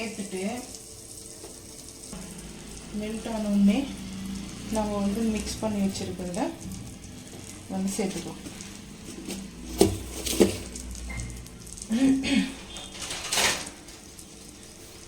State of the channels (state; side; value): identical; both; correlation 1.00